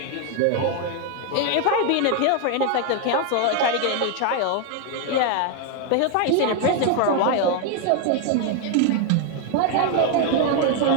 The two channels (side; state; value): both; different; correlation 0.01